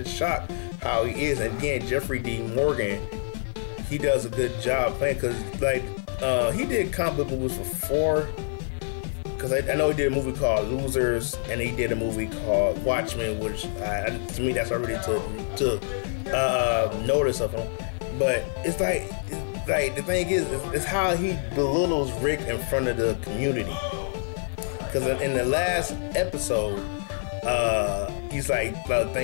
shocked how he is. And again, Jeffrey D. Morgan, he does a good job playing, because he did comic book movies before. Because I know he did a movie called Losers, and he did a movie called Watchmen, which to me that's already took notice of him. But it's like the thing is, it's how he belittles Rick in front of the community. Because in the last episode, he's like,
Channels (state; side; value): silent; right; 61 dB below the other